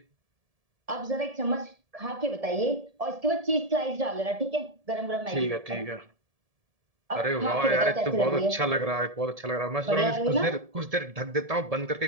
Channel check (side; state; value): left; late; 1.7 ms